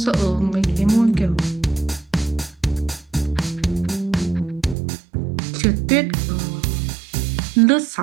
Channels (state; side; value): drops out; left; at 4.8 s